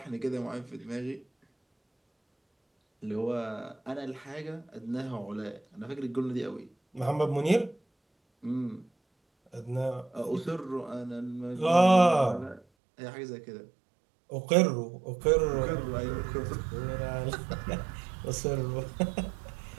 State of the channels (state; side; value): drops out; left; at 12.6 s